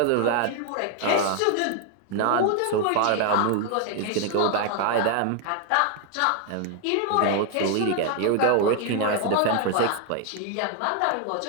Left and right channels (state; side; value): different; both; correlation 0.00